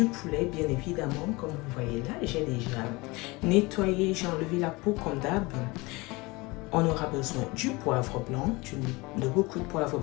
poulet, bien évidemment, comme vous voyez là. J'ai déjà nettoyé, j'ai enlevé la peau comme d'hab. On aura besoin du poivre blanc, de beaucoup de poivre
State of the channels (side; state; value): right; quieter; 23.9 dB